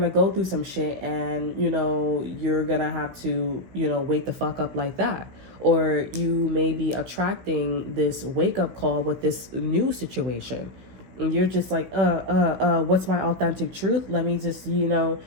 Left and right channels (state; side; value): late; left; 16 ms